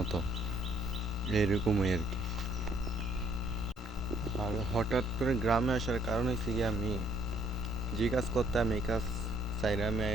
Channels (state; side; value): normal; both; correlation 0.66